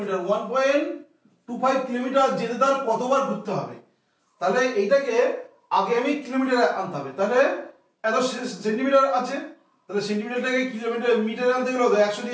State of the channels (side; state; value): both; identical; correlation 1.00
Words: কিলোমিটার যেতে তার কতবার ঘুরতে হবে? তাহলে এইটাকে আগে আমি কিলোমিটারে আনতে হবে। তাহলে এত সেন্টিমিটার আছে, তাহলে সেন্টিমিটারটাকে মিটারে আনতে গেলে 100